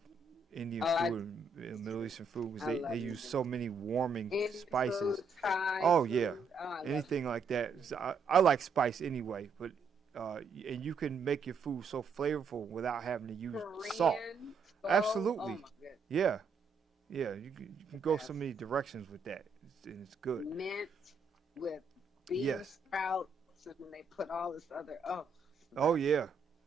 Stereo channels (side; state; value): left; quieter; 4.3 dB